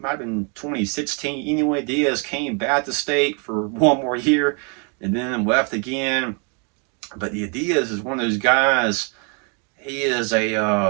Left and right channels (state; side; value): quieter; left; 36.3 dB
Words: have been 2016. Anyway, Diaz came back to State for one more year and then left again. But Diaz is one of those guys. He's